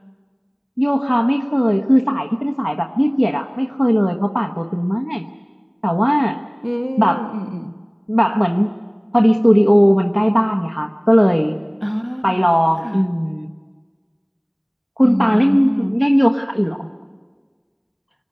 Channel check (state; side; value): identical; both; correlation 1.00